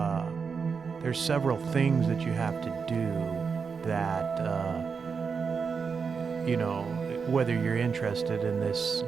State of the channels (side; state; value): left; quieter; 5.6 dB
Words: there's several things that you have to do that, whether you're interested in this